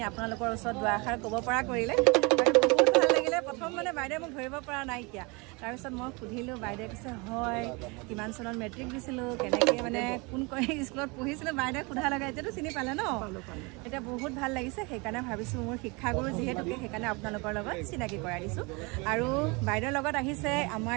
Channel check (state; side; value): quieter; left; 28.2 dB